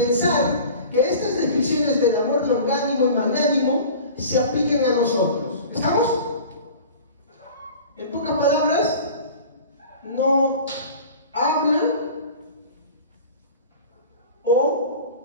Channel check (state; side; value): inverted; both; correlation -0.40